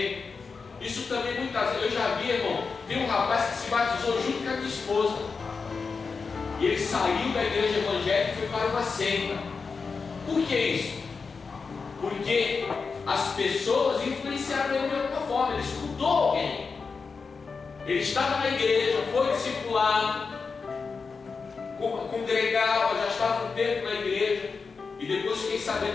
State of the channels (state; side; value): quieter; right; 4.9 dB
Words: Isso também muitas vezes, eu já vi, irmão, tem um rapaz que se batizou junto com a minha esposa. E ele saiu da igreja evangélica e foi para uma seita. Por que isso? Porque as pessoas influenciaram ele de alguma forma. Ele escutou alguém. Ele estava na igreja, foi discipulado, congregava, já estava um tempo na igreja. E depois fiquei